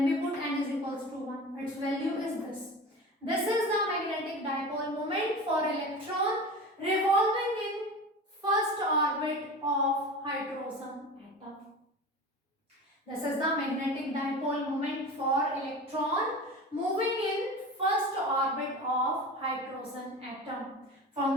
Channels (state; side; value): normal; both; correlation 0.32